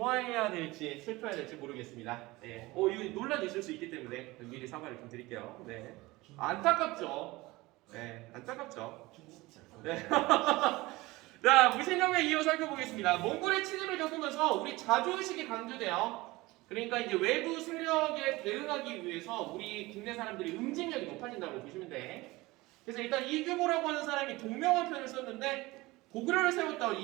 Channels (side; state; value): left; quieter; 20.8 dB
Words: 될지 슬퍼해야 될지 모르겠습니다. 예. 이거 논란이 있을 수 있기 때문에 미리 사과를 좀 드릴게요. 네. 안타깝죠. 네, 안타깝죠. 네. 자, 무신경에 이어 살펴보겠습니다. 몽골의 침입을 겪으면서 우리 자주의식이 강조돼요. 그러니까 이제 외부 세력에 대응하기 위해서 우리 국내 사람들이 응징력이 높아진다고 보시면 돼. 그래서 일단 이규보라고 하는 사람이 동명왕 편을 썼는데 고구려를 세웠던